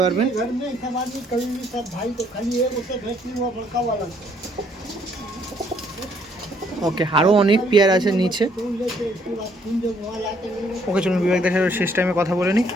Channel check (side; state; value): both; normal; correlation 0.66